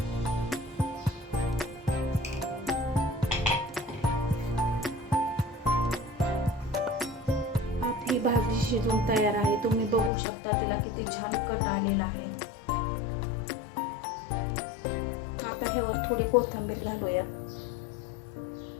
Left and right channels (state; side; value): drops out; right; at 10.1 s